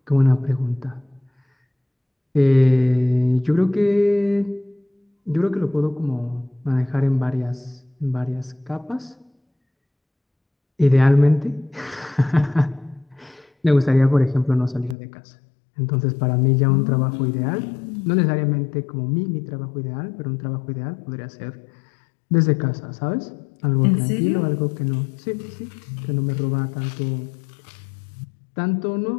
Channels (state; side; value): drops out; right; at 15.0 s